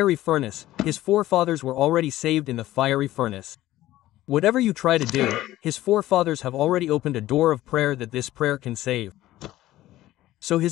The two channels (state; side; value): quieter; right; 15.2 dB